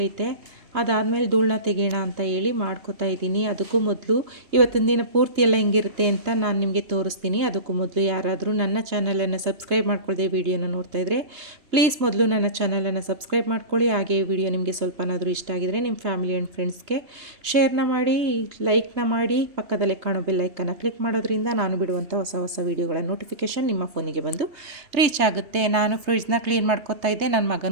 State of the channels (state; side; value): late; left; 3.2 ms